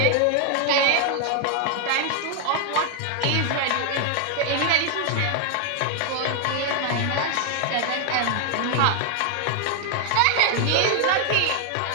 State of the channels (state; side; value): different; both; correlation 0.00